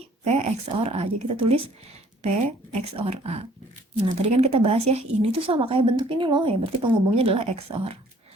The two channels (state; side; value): normal; both; correlation 0.58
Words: P XOR A. Jadi kita tulis P XOR A. Nah, tadi kan kita bahas ya, ini tuh sama kayak bentuk ini loh, ya berarti penghubungnya adalah XOR.